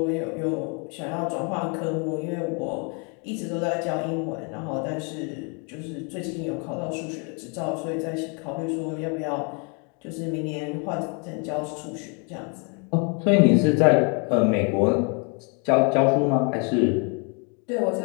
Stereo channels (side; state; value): right; quieter; 35.6 dB